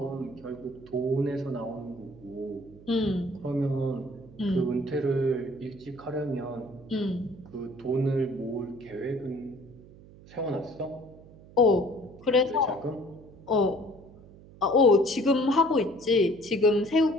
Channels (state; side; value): noise; right; hum, 21 dB below the sound